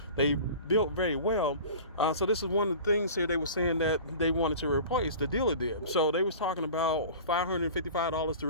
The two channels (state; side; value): inverted; both; correlation -0.39